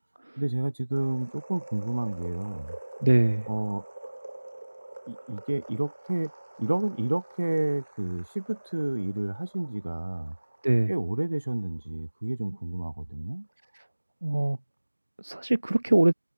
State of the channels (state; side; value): inverted; both; correlation -1.00